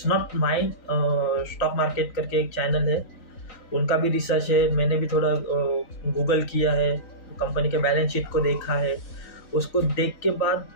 not mind, stock market करके एक चैनल है उनका भी रिसर्च है, मैंने भी थोड़ा गूगल किया है, कंपनी के बैलेंस शीट को देखा है, उसको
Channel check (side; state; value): right; late; 3.9 ms